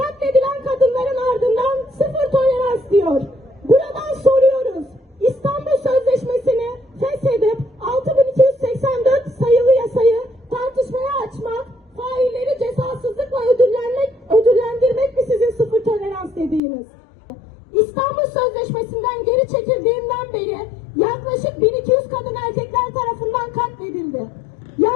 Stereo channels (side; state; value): right; drops out; at 16.6 s